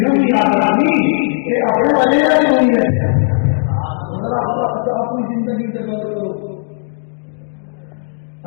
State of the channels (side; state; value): right; silent; digital silence